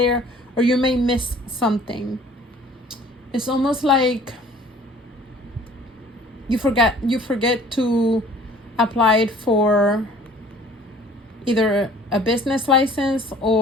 or you may miss something. It's almost like you forget to apply it for either a business license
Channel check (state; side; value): normal; both; correlation 0.51